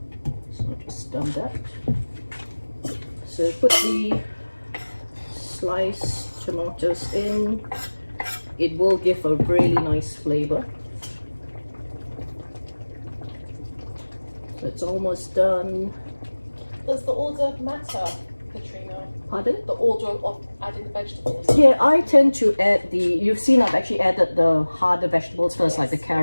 So I'll just dump that. So put the sliced tomatoes in. It will give a really nice flavor. So it's almost done. Does the order matter, Petrina? Pardon? The order of adding the vegetables? Yeah, I tend to add you've seen I've actually added the harder vegetables first, like the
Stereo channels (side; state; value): both; inverted; correlation -1.00